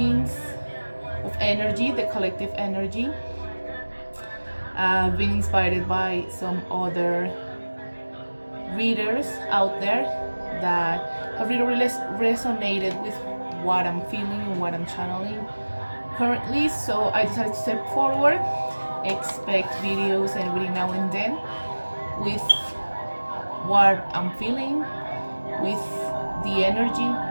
of energy, the collective energy. I've been inspired by some other readers out there that have really resonated with what I'm feeling and what I'm channeling currently. So I decided to step forward, expect videos and reading now and then with what I'm feeling, with the energy.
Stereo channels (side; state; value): both; inverted; correlation -1.00